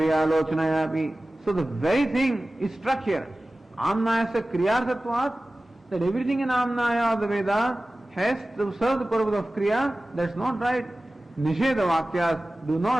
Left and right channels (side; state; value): both; normal; correlation 0.97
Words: So the very thing is struck here. Amnayasya Kriyarthatvat, that everything in Amnaya of the Veda has to serve the purpose of Kriya. That's not right. Nisheda Vakyas do